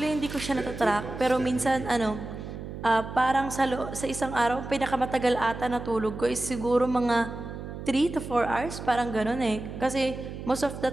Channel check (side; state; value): right; noise; hum, 9 dB below the sound